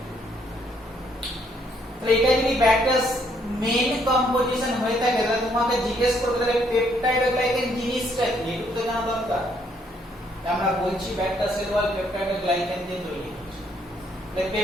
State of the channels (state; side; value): normal; both; correlation 0.69